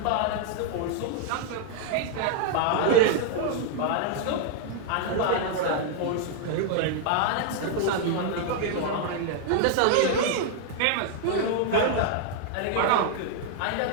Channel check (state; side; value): different; both; correlation -0.01